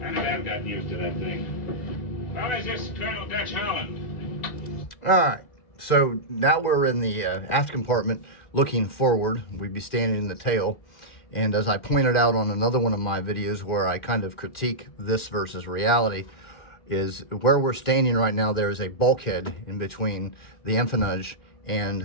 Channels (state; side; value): late; right; 2.1 ms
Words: I think I've got used to that thing. How is this, Colonel Dutch Holland? All right, so now we're in the aft compartment looking forward. We'd be standing in the tail. And as I pointed out on another one of my videos where I kind of critique this versus reality, is where we're standing right now, there is a bulkhead in between the empennage